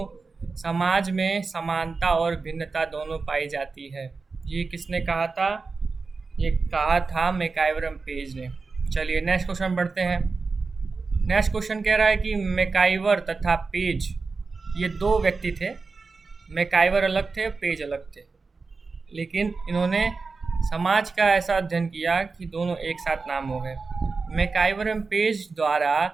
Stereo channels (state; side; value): quieter; left; 4.3 dB